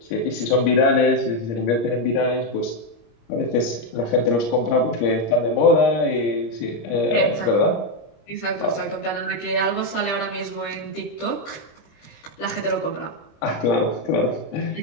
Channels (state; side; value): late; right; 25 ms